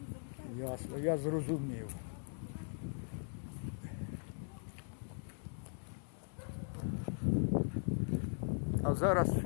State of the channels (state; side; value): silent; right; digital silence